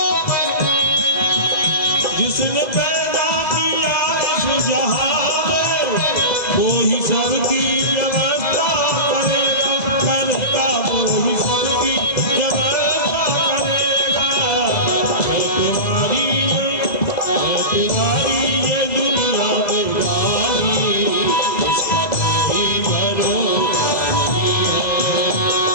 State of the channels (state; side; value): late; right; 2.0 ms